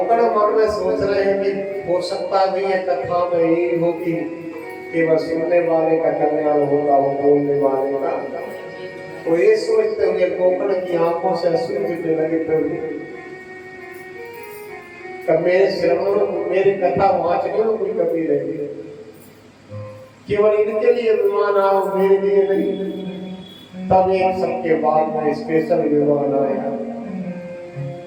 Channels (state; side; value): identical; both; correlation 1.00